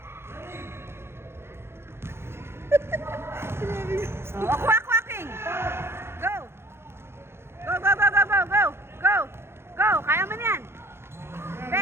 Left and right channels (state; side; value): late; left; 0.12 ms